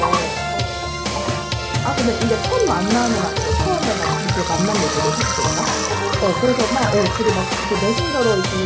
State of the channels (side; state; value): both; identical; correlation 1.00